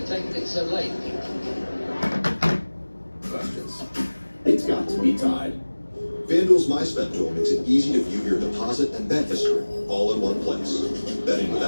taken it so late. Questions. It's got to be tied. FanDuel's MySpend tool makes it easy to view your deposit and bet history all in one place. Betting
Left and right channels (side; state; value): both; inverted; correlation -1.00